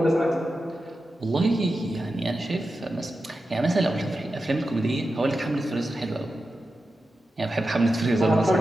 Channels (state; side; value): normal; both; correlation 0.91